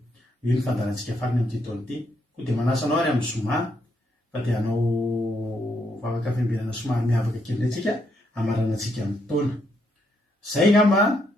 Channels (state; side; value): normal; both; correlation 0.76